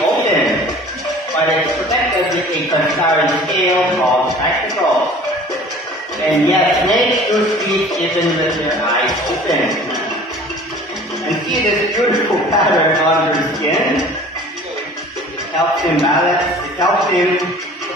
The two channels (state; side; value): normal; both; correlation 0.46